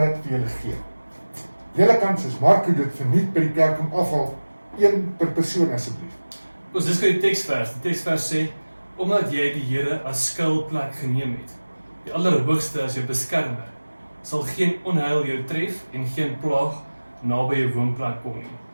dit vir julle gee. Julle kan soos Marco dit verniet by die kerk om afval, 1 per persoon asseblief. Ons dis vir die teksvers. Die teksvers sê, omdat jy die Here as skuilplek geneem het, die Allerhoogste as jou beskermer, sal geen onheil jou tref en geen plaag naby jou woonplek kom nie.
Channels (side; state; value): both; inverted; correlation -1.00